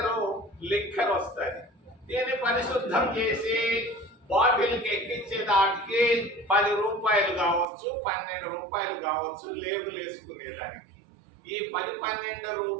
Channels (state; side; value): drops out; left; at 7.7 s